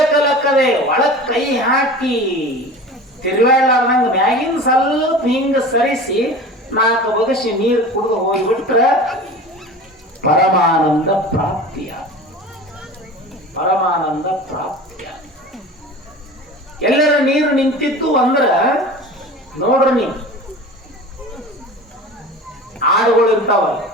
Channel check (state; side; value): normal; both; correlation 0.36